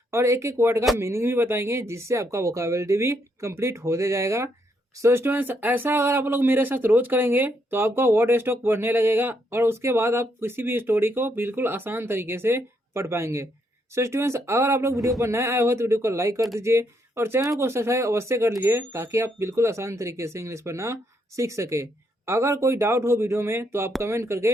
और एक एक वर्ड का मीनिंग भी बताएंगे, जिससे आपका वोकैबुलरी भी कंप्लीट होते जाएगा। सो स्टूडेंट्स, ऐसा अगर आप लोग मेरे साथ रोज करेंगे तो आपका वर्ड स्टॉक बढ़ने लगेगा और उसके बाद आप किसी भी स्टोरी को बिल्कुल आसान तरीके से पढ़ पाएंगे। सो स्टूडेंट्स, अगर आप लोग वीडियो पर नए आए हो तो वीडियो को लाइक कर दीजिए और चैनल को सब्सक्राइब अवश्य कर लीजिए, ताकि आप बिल्कुल आसान तरीके से इंग्लिश पढ़ना सीख सके। अगर कोई डाउट हो वीडियो में तो आप कमेंट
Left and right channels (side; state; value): both; normal; correlation 0.75